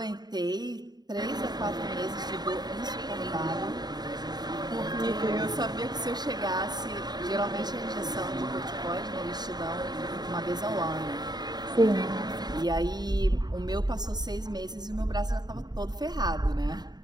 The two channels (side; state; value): left; late; 0.20 ms